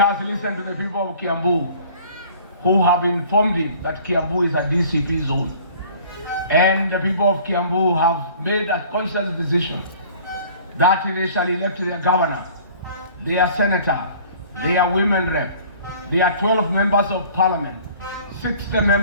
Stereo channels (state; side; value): inverted; both; correlation -0.50